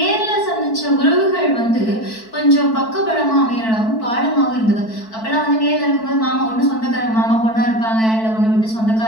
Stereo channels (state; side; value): late; right; 4.5 ms